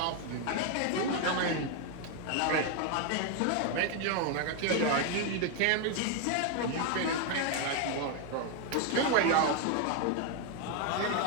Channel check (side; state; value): both; different; correlation 0.01